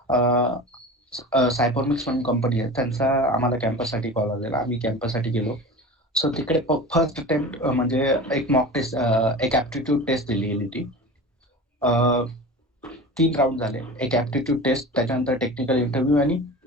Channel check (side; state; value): both; normal; correlation 0.33